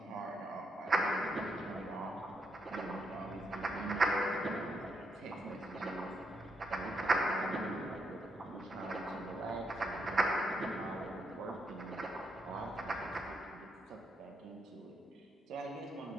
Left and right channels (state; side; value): normal; both; correlation 0.78